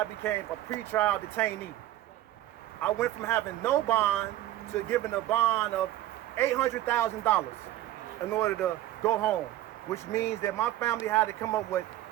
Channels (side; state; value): left; quieter; 14.2 dB